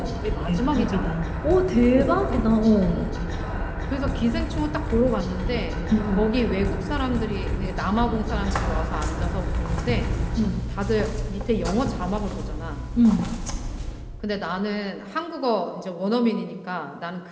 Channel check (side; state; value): both; identical; correlation 1.00